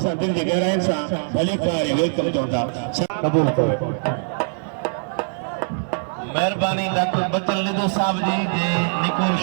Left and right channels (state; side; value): silent; left; digital silence